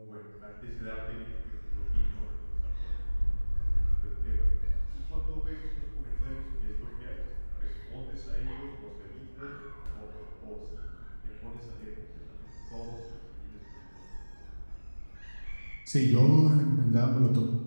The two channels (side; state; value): both; inverted; correlation -1.00